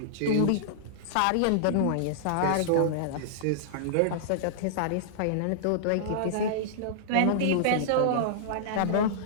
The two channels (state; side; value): different; both; correlation -0.02